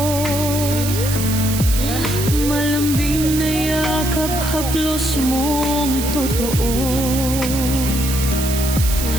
Malambing na yakap, haplos mong totoo.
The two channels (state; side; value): noise; right; hiss, 6 dB below the sound